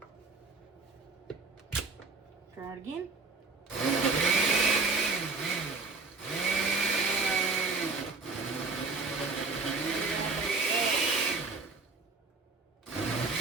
Try it again.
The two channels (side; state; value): left; quieter; 3.9 dB